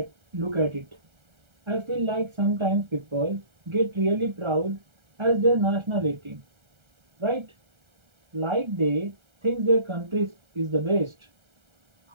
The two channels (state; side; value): late; left; 1.3 ms